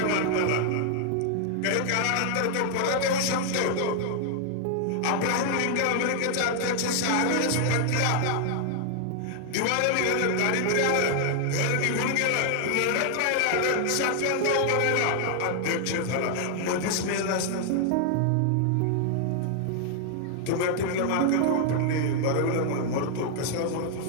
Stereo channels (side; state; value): both; different; correlation 0.00